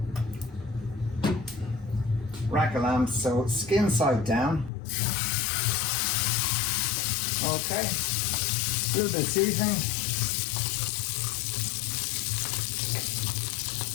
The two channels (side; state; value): right; drops out; at 4.7 s